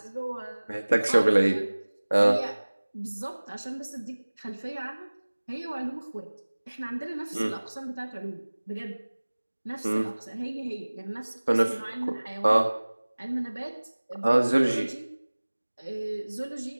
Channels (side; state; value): both; inverted; correlation -1.00